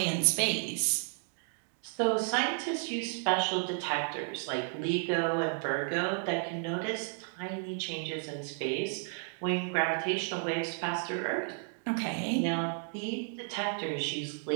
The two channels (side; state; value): left; silent; 55 dB below the other